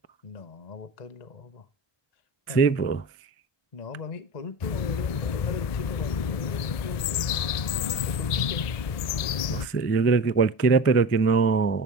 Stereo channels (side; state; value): right; late; 1.7 ms